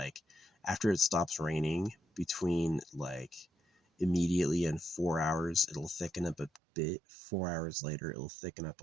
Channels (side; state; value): left; drops out; at 6.6 s